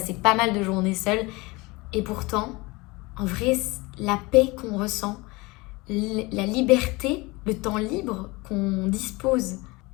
pas mal de journées seule. Et pourtant, en vrai, la paix qu'on ressent, la liberté, le temps libre qu'on dispose,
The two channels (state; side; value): quieter; right; 23.8 dB